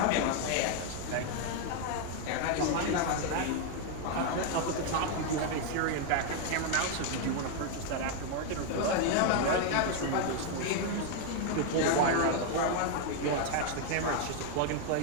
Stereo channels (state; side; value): different; both; correlation 0.01